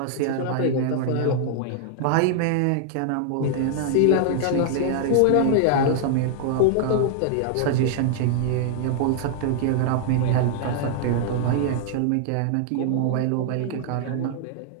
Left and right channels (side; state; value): both; different; correlation -0.01